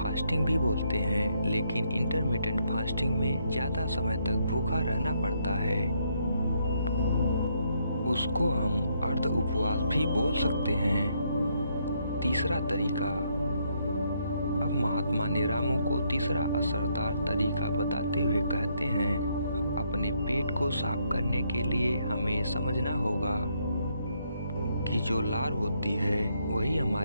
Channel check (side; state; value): both; inverted; correlation -0.74